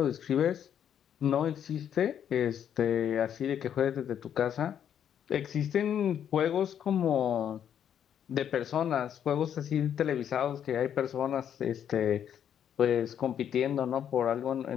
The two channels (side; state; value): right; quieter; 9.2 dB